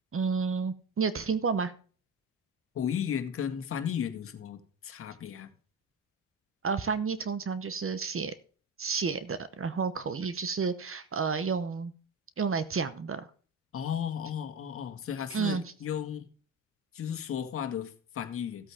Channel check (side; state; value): both; normal; correlation 0.24